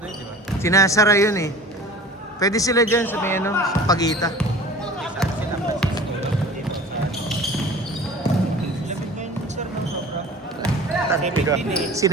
yun, di ba? Sinasara yun eh. Pwede sila dyan sa may sa Pagita. Saan sila?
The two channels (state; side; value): normal; both; correlation 0.42